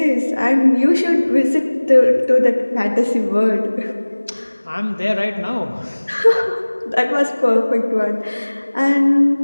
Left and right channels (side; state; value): both; inverted; correlation -1.00